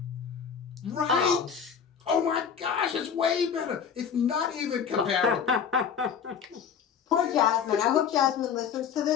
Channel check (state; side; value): quieter; right; 7.3 dB